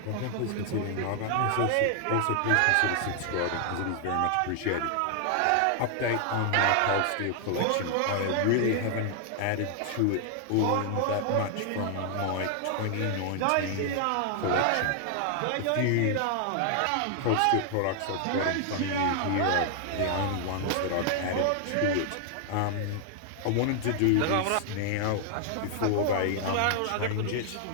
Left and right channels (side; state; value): both; different; correlation 0.00